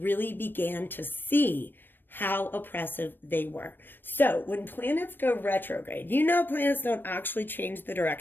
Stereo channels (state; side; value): late; right; 0.095 ms